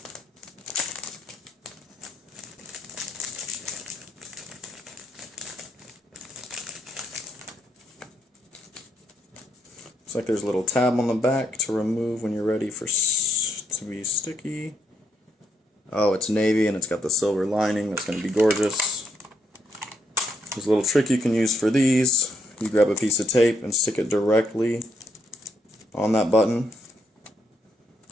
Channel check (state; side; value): normal; both; correlation 0.76